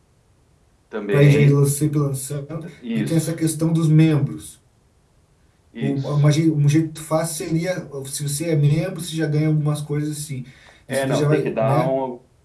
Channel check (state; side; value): identical; both; correlation 1.00